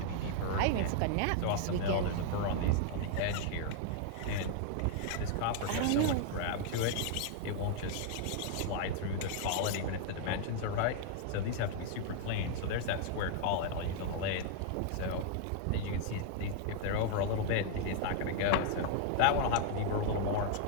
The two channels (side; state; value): both; different; correlation 0.00